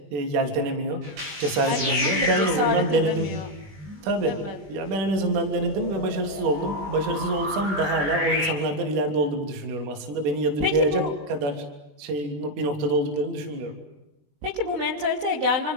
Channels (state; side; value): late; left; 20 ms